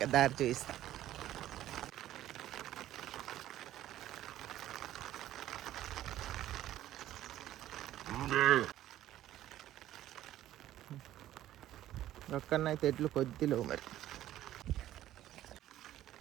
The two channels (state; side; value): quieter; left; 13.3 dB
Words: దారి చూపిస్తా. ఒక్కనైతే ఎడ్లు కొద్దిలో మరి.